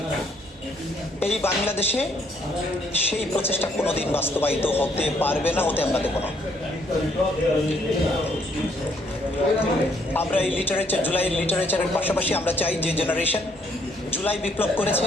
এই বাংলাদেশে সেই প্রচেষ্টা কোনোদিন বাস্তবায়িত হতে পারবে না, হতে আমরা দেব না। আমরা এই লিটারেচার, জুলাইয়ের লিটারেচারের পাশাপাশি আমরা চাই যে জেনারেশন জুলাই বিপ্লব করেছে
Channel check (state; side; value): normal; both; correlation 0.68